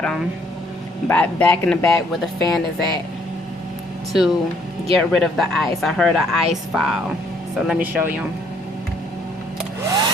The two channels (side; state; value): both; normal; correlation 0.66